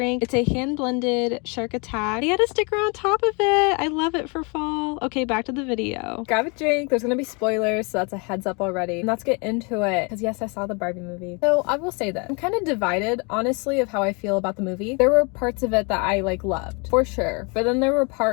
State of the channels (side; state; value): right; quieter; 32.1 dB